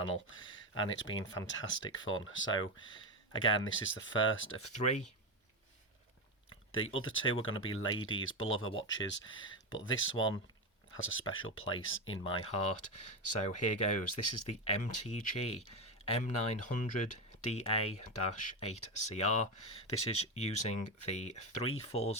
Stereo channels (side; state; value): both; normal; correlation 0.14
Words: and it's been fantastic fun. So again, this is the first of three. The other two are going to be ladies' beloved watches, but this one has a special place in my heart. So here goes. This is the MTG-M900DA-8CR. This is using the